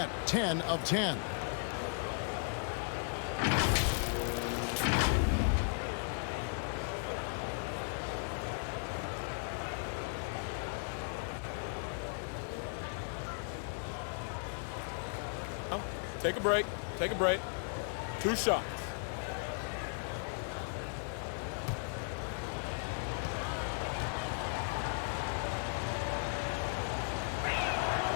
10 of 10. Take a break. Take a break. 2 shots.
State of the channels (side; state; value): right; silent; 54 dB below the other